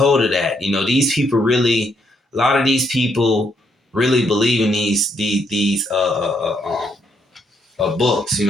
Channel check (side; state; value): both; normal; correlation 0.74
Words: of that. These people really, a lot of these people really believe in these books. You